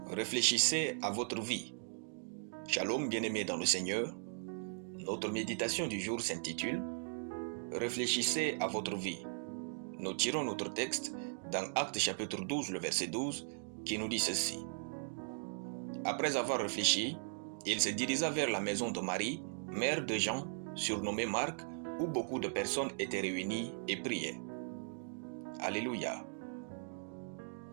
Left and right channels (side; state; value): left; silent; digital silence